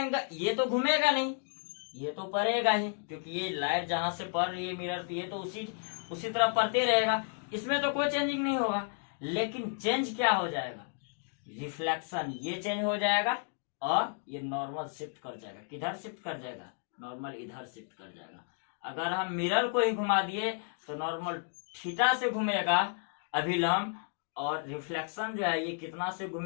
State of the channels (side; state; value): right; silent; 56 dB below the other